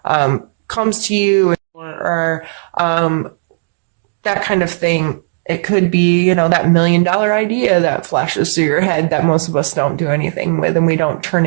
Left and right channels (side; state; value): left; silent; digital silence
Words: comes to you or, that kind of thing. It could be, that $1 million idea that flashes through your head that most of us don't do anything with, and we don't turn